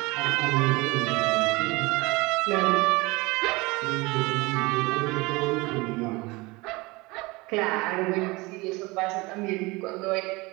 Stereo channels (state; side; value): quieter; left; 23.6 dB